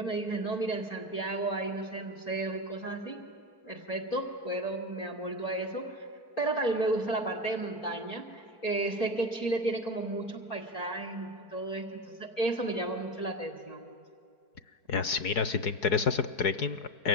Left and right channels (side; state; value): right; late; 4.7 ms